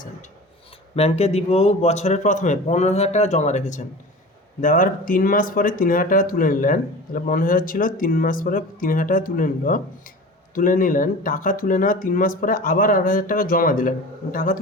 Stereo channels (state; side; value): normal; both; correlation 0.36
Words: ব্যাংকে দীপুবাবু বছরের প্রথমে 15,000 টাকা জমা রেখেছেন, দেওয়ার 3 মাস পরে 3,000 টাকা তুলে নিলেন, তাহলে 15,000 ছিল, 3 মাস পরে 3,000 টাকা তুলে নিলেন। টাকা তুলে নেওয়া 3 মাস পরে আবার 8,000 টাকা জমা দিলেন, টাকা